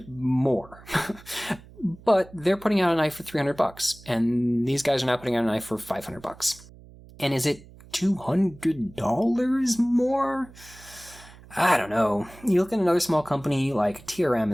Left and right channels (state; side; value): noise; right; hum, 21 dB below the sound